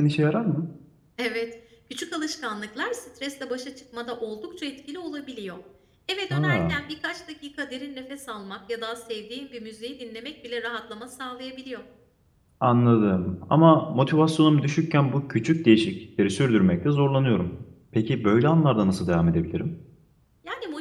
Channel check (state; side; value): identical; both; correlation 1.00